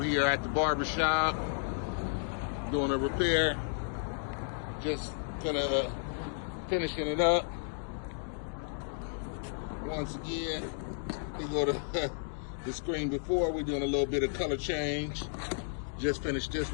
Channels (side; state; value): right; silent; digital silence